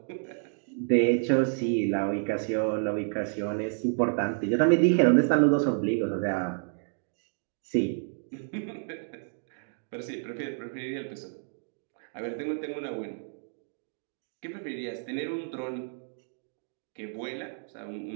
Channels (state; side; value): silent; left; digital silence